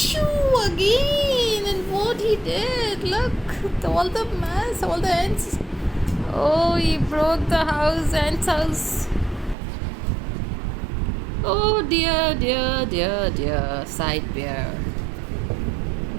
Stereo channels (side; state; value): left; drops out; at 9.6 s